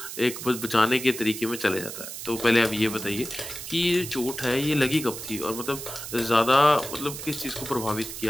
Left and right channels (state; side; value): noise; right; hiss, 9 dB below the sound